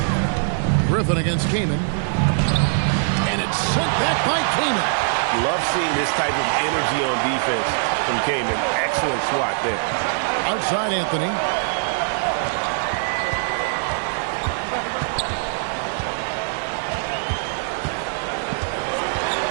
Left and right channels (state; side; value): silent; left; 57 dB below the other